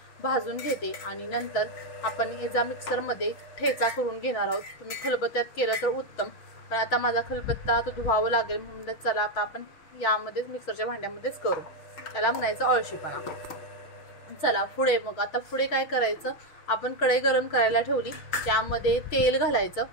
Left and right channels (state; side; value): late; right; 6.3 ms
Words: भाजून घेते आणि नंतर आपण याचा मिक्सर मध्ये ठेचा करून घेणार आहोत। तुम्ही खलबत्त्यात केलं तर उत्तम, पण आता माझा खलबत्ता तो धुवावा लागेल म्हणून चला आता आपण यामध्येच मिक्सरच्या भांड्यामध्येच करू। त्याला म्हणायचं अळशीपणा। चला पुढे मग आता पुढे काय करायचं, आपण कढई गरम करायला ठेवली, त्यामध्ये तेल घालायचं।